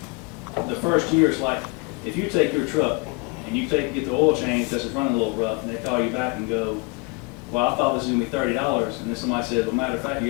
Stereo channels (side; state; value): right; quieter; 29.4 dB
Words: the first year is like, if you take your truck and you get the oil change because it's running a little rough, and they call you back and go, well, I thought this was going to be $30, and then somebody said, well, matter of fact, you